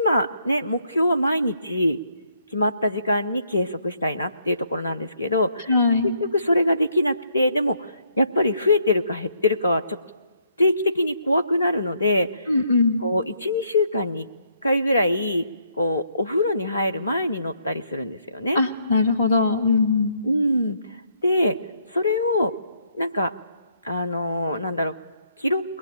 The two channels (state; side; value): inverted; both; correlation -0.71